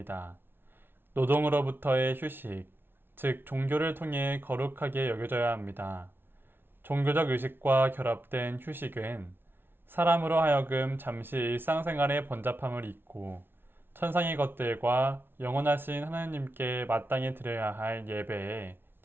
노동으로부터의 휴식, 즉 종교를 통해 거룩하게 여겨져야 합니다. 종교적 의식과 결합된 휴식은 사람으로 하여금 잠시 일상생활의 번잡함을 잊고 천상의 것들과 영원하신 하나님께 마땅히 드려야 할 예배에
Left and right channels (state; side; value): late; left; 0.11 ms